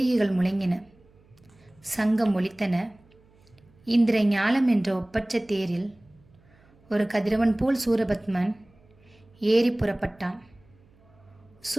முழங்கின, சங்கம் ஒலித்தன. இந்திர ஞாலம் என்ற ஒப்பற்ற தேரில் ஒரு கதிரவன் போல் சூரபத்மன் ஏறி புறப்பட்டான்.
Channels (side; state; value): right; noise; hum, 30 dB below the sound